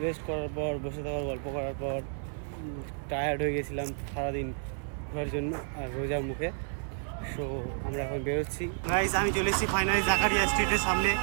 রেস্ট করার পর, বসে থাকার গল্প করার পর টায়ার্ড হয়ে গেছিলাম সারাদিন ঘোরার জন্য আর রোজার মুখে। সো আমরা এখন বেরোচ্ছি। গাইজ আমি চলে এসেছি ফাইনালি জাকারিয়া স্ট্রিটের সামনে।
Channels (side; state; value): left; silent; 57 dB below the other